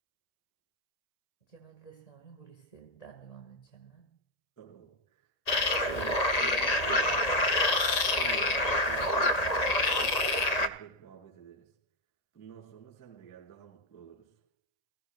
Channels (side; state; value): right; late; 1.8 ms